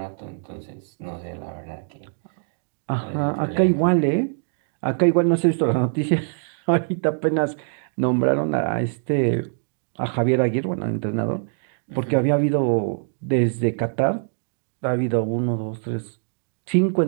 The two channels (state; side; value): silent; left; digital silence